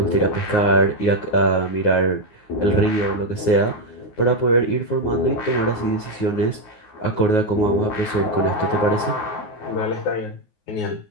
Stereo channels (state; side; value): late; right; 9.5 ms